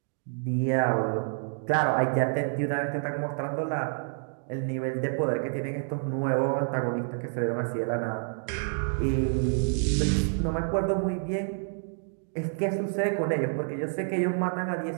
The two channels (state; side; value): silent; left; 59 dB below the other